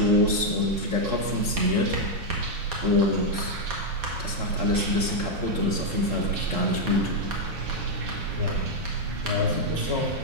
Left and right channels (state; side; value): late; left; 3.7 ms